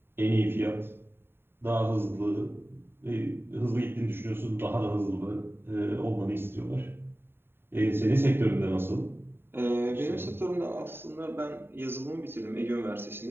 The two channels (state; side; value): late; left; 0.11 ms